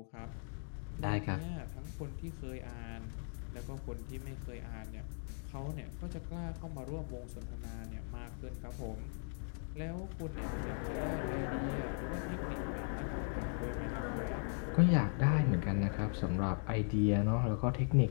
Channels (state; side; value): silent; right; 52 dB below the other